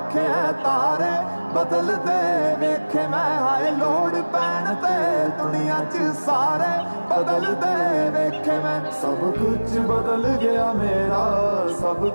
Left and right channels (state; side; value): inverted; both; correlation -1.00